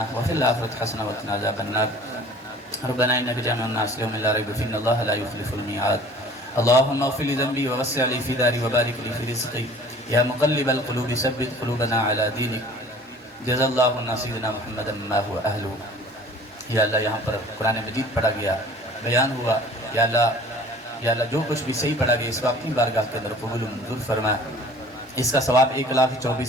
وفی الآخرۃ حسنہ وقنا عذاب النار. ربنا انک جامع الناس لیوم لا ریب فیہ ان اللہ لا یخلف الميعاد. اللهم اغفر لي ذنبي ووسع لي في داري وبارك لي في رزقي يا مقلب القلوب ثبت قلوبنا على دينك. جزا اللہ سیدنا محمد ما هو اہلہ. یا اللہ یہاں پر قرآن مجید پڑھا گیا, بیان ہوا, یا اللہ جو کچھ بھی صحیح پڑھا گیا اس کو اپنی بارگاہ کے اندر قبول و منظور فرما. اس کا ثواب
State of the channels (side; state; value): both; normal; correlation 0.48